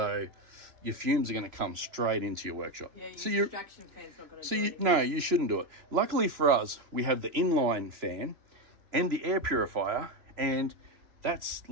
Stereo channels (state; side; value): late; left; 3.0 ms